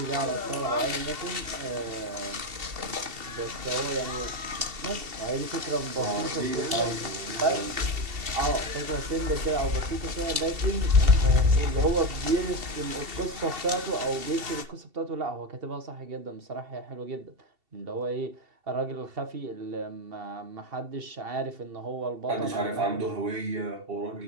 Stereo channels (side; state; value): left; late; 2.7 ms